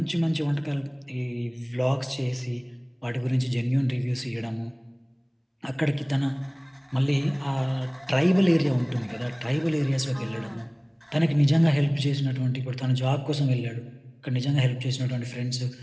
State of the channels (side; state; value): both; identical; correlation 1.00